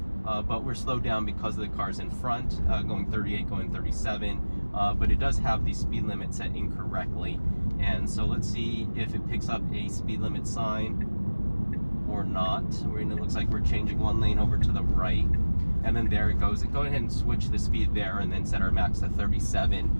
but we're slowed down because of the cars in front, going 38, going 37. But it does have the speed limit set incorrectly. And so let's see if it picks up a speed limit sign or not. It looks like we're changing 1 lane over to the right. And then there it goes. Go ahead and switch the speed there and then set our max to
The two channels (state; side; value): inverted; both; correlation -1.00